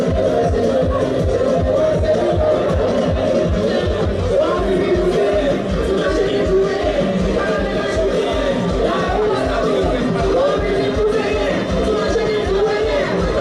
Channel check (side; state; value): both; identical; correlation 1.00